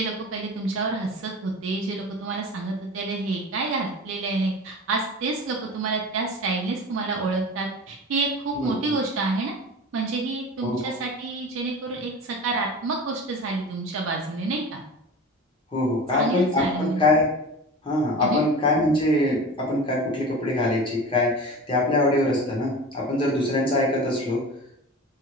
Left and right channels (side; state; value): both; normal; correlation 0.33